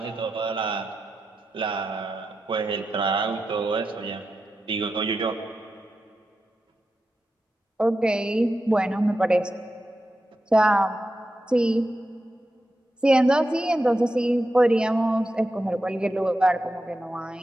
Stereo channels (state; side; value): normal; both; correlation 0.90